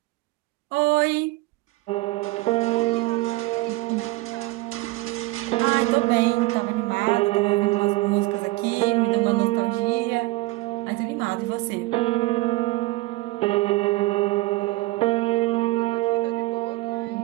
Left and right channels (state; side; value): quieter; left; 20.5 dB